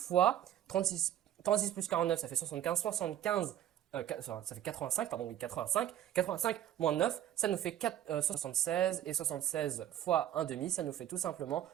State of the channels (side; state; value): left; quieter; 11.4 dB